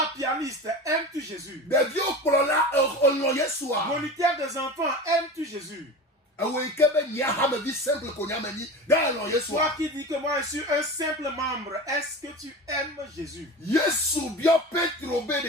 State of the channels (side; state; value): both; normal; correlation 0.31